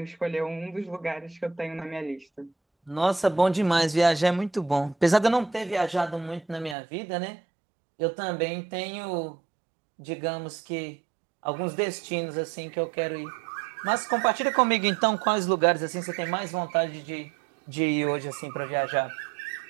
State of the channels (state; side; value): drops out; left; at 6.8 s